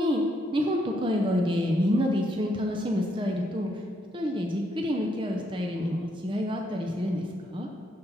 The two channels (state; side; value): normal; both; correlation 0.75